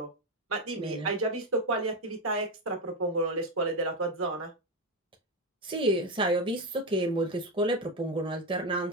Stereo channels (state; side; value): normal; both; correlation 0.11